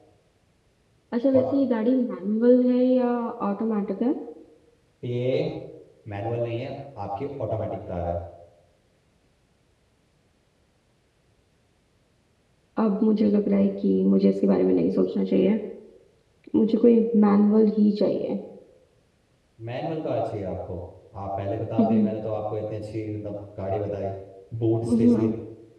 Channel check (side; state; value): both; identical; correlation 1.00